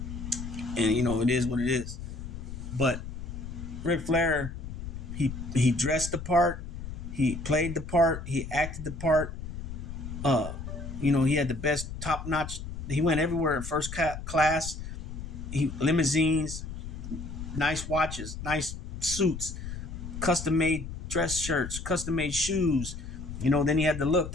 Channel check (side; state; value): left; noise; rumble, 8 dB below the sound